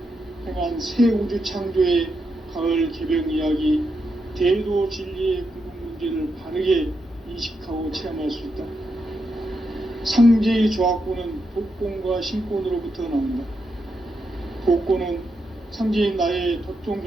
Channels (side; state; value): both; normal; correlation 0.83